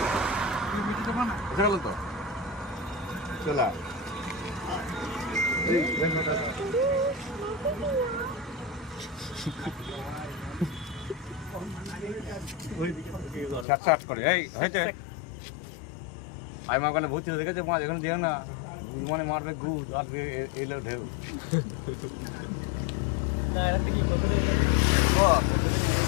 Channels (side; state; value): right; drops out; at 13.7 s